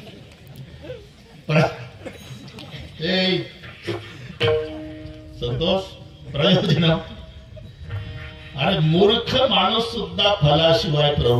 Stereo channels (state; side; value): identical; both; correlation 1.00